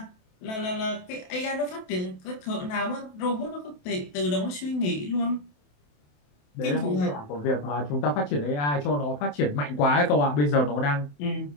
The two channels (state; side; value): late; right; 27 ms